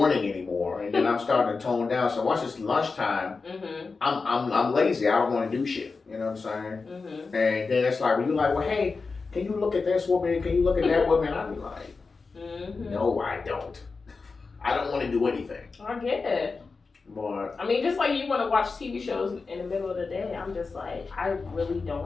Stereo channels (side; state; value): right; quieter; 4.4 dB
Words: anymore, and then I'm starting to tone down. So once it's lunchtime, I'm lazy. I don't want to do shit. You know what I'm saying? And then it's like when you're like, well, hey, can you look at this woman? Can you look at that woman? I'd be like, no, I don't. I don't want to do anything. I get it. But I mean, just like you want to watch TV shows in the middle of the day, I'm just like, I really